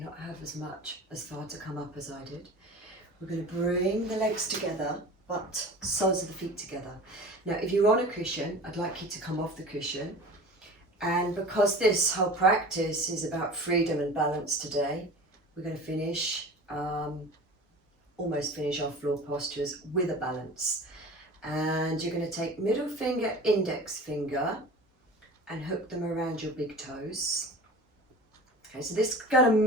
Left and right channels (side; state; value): both; normal; correlation 0.38